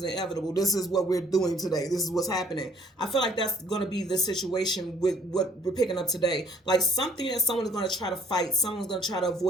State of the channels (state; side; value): normal; both; correlation 0.60